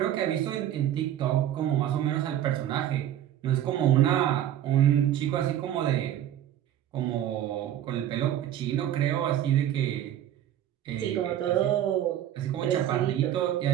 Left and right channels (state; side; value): quieter; left; 11.4 dB